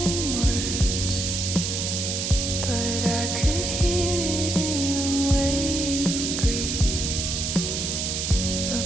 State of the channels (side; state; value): right; noise; hiss, 2 dB below the sound